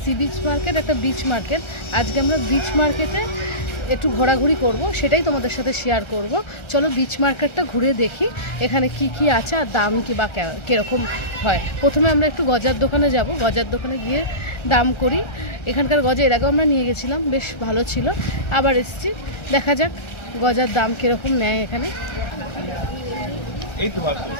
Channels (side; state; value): right; late; 1.3 ms